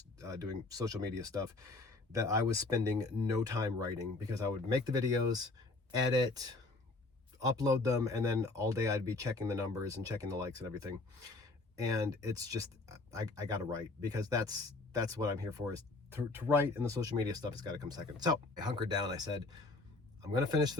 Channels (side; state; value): right; quieter; 3.3 dB